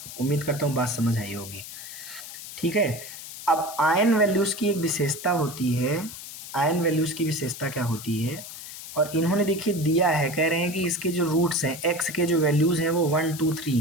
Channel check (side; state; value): left; noise; hiss, 12 dB below the sound